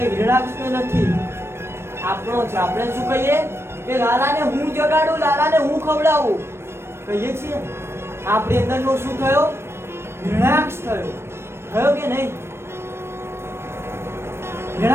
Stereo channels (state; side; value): late; left; 0.12 ms